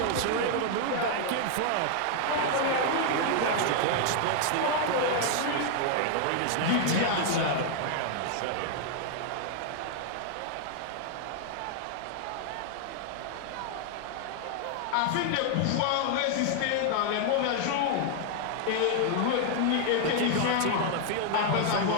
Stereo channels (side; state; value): both; different; correlation 0.00